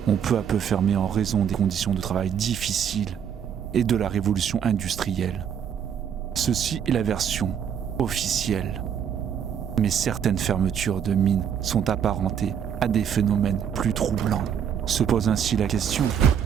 ont peu à peu fermé en raison des conditions de travail difficiles et de la révolution industrielle. Ceci est la version officielle. Mais certaines fermetures de mines sont apparentées à des phénomènes plus troublants. Se pose ainsi la question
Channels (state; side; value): quieter; left; 8.3 dB